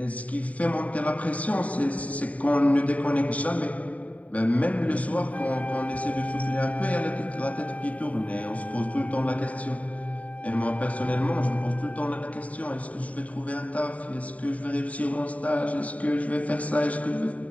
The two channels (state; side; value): late; right; 0.069 ms